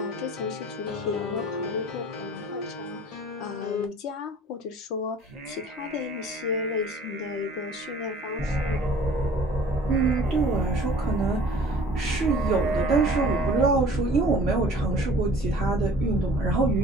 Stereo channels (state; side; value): normal; both; correlation 0.49